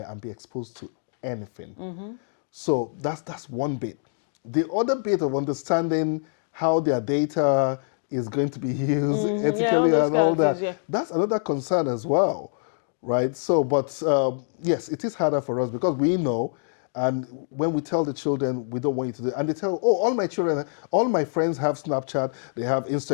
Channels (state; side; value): silent; right; digital silence